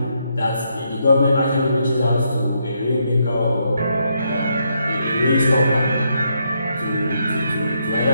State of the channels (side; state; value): both; inverted; correlation -0.77